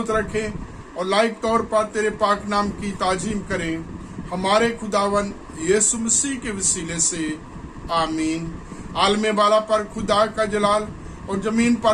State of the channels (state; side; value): identical; both; correlation 1.00